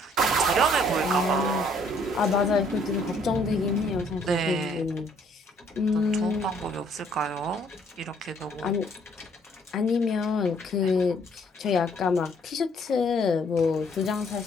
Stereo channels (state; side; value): normal; both; correlation 0.64